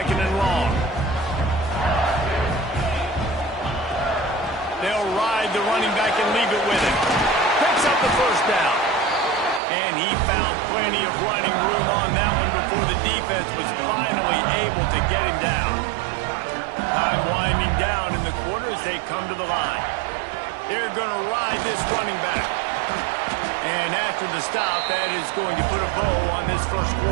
and long. They'll ride the running back and leave it with him. Picks up the 1st down. And he found plenty of running room on that one before the defense was finally able to get him down. Time winding down in the quarter as they come to the line. They're going to ride this running back. And after the stop, that is going to put a bow on this 1st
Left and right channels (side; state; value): left; drops out; at 9.6 s